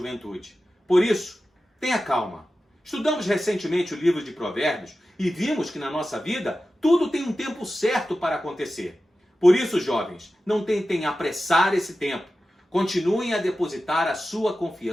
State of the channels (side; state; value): both; normal; correlation 0.93